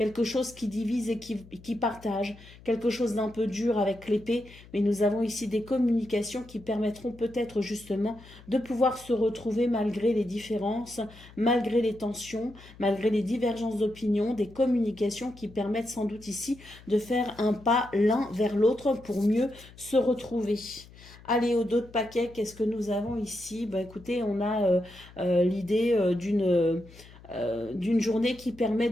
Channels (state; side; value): noise; left; hum, 21 dB below the sound